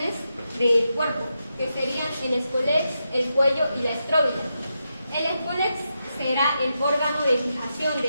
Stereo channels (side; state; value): both; inverted; correlation -0.86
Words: del cuerpo, que serían el escolex, el cuello y la estróbila. El escolex será el órgano de fijación